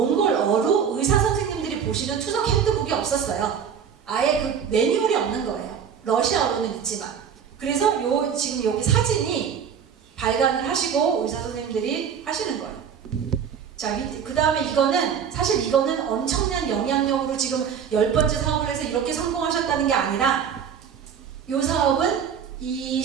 의사 선생님들이 보시는 투석 핸드북이 없었어요. 아예 그 매뉴얼이 없는 거예요. 러시아어로는 있지만. 그래서 지금 여기 사진이 발간을 하시고 의사 선생님들이 하시는 거예요. 자, 그 다음에 사실 이거는 엄청난 영향력으로 지금 10번째 사업을 해서 이렇게 성공하셨다는 게 아니라, 이 사업은 이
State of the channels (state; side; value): quieter; left; 7.6 dB